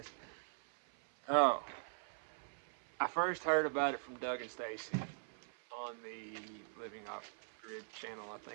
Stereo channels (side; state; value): left; silent; 50 dB below the other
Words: Oh, I first heard about it from Doug and Stacy on the Living Off Grid channel, I